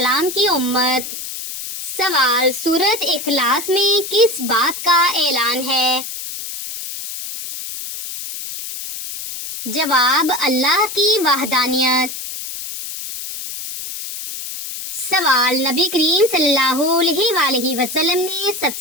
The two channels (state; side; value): noise; left; hiss, 8 dB below the sound